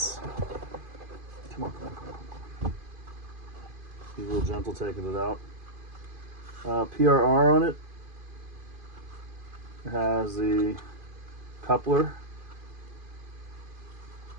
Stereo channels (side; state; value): left; late; 2.5 ms